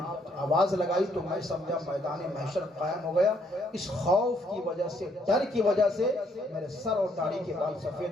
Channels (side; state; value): both; normal; correlation 0.69